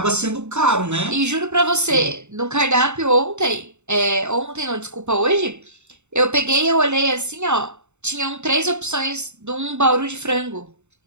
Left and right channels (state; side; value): late; left; 0.83 ms